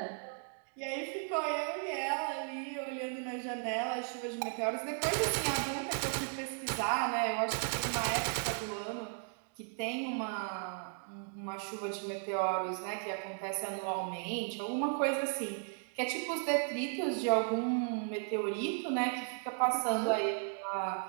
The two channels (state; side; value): silent; left; 54 dB below the other